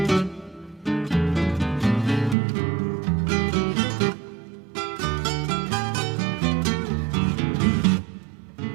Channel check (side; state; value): left; drops out; at 2.4 s